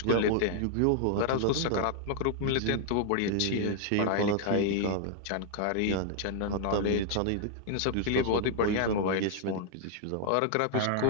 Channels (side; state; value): both; different; correlation -0.01